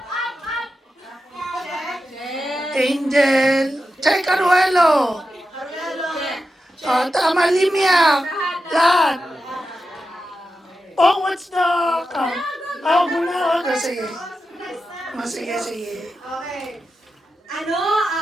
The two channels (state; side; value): normal; both; correlation 0.90